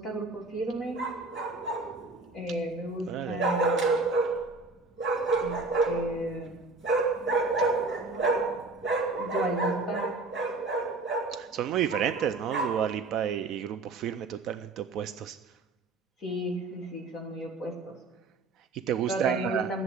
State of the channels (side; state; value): left; quieter; 3.6 dB